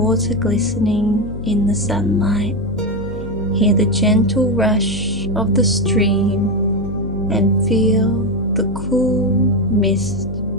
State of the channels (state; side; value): noise; left; hum, 12 dB below the sound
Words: glistening in the sunlight, hear the gentle rush of the stream, and feel the cool mist